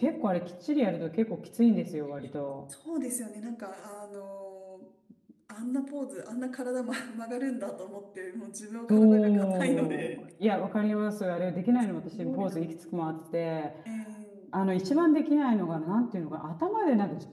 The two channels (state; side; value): identical; both; correlation 1.00